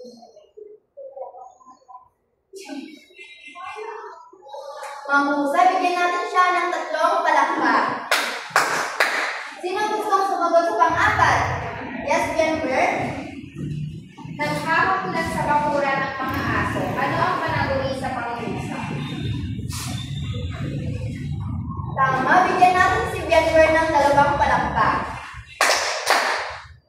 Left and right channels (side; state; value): both; identical; correlation 1.00